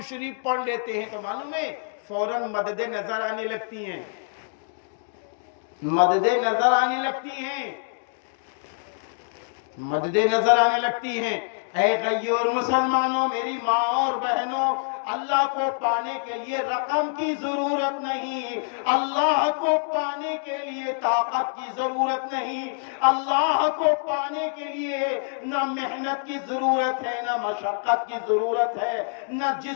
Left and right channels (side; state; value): right; silent; digital silence